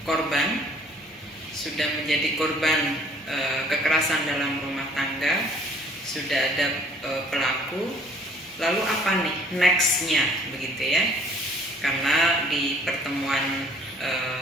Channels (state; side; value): normal; both; correlation 0.57